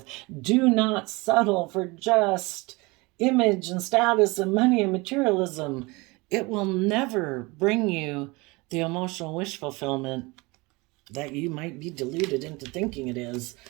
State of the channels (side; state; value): left; quieter; 24.8 dB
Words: Do not settle for just image and status and money and materialism. It will never bring you the emotional wish fulfillment that you might be deluded into thinking it is.